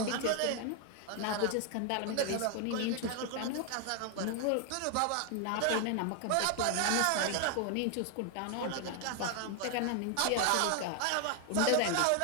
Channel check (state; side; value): different; both; correlation 0.00